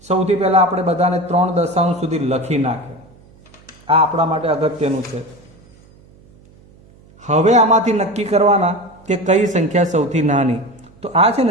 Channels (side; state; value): right; noise; hum, 27 dB below the sound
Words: સૌથી પહેલા આપણે બધાને 3 દશાંશ સુધી લખી નાખે. આ આપણા માટે અગત્યનું છે. હવે આમાંથી નક્કી કરવાના કે કઈ સંખ્યા સૌથી નાની. તો આ છે